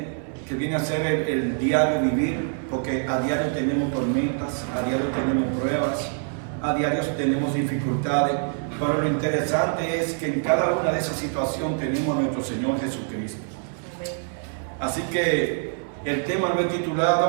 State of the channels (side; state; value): left; silent; 60 dB below the other